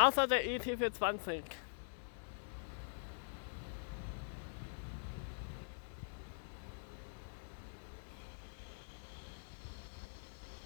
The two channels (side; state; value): right; silent; digital silence